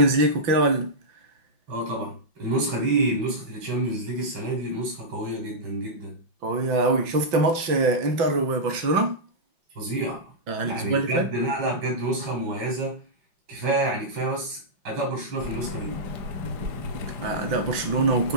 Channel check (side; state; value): left; late; 5.9 ms